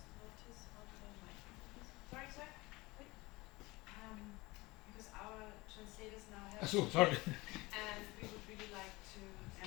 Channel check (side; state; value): right; quieter; 22.2 dB